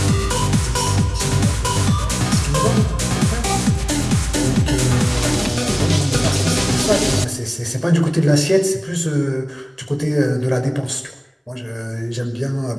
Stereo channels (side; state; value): both; identical; correlation 1.00